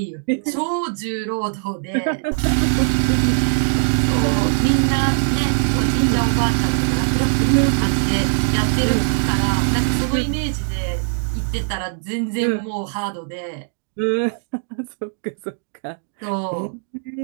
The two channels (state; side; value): silent; left; 65 dB below the other